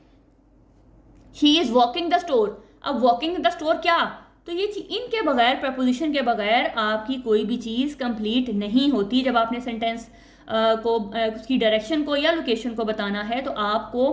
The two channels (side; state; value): both; identical; correlation 1.00